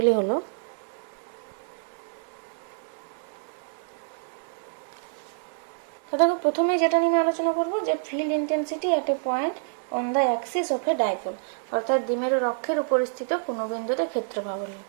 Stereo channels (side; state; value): left; silent; digital silence